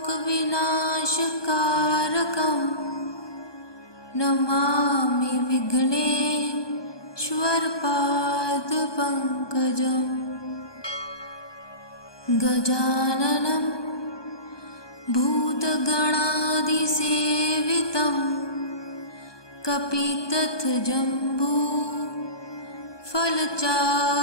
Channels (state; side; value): late; right; 1.2 ms